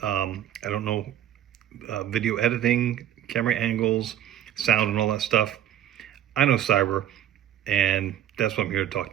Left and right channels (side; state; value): left; quieter; 11.1 dB